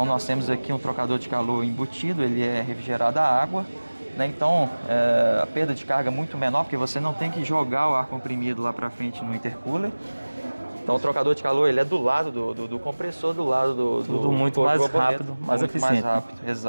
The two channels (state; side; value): inverted; both; correlation -1.00